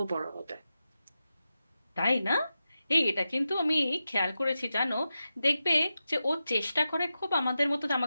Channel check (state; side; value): inverted; both; correlation -0.91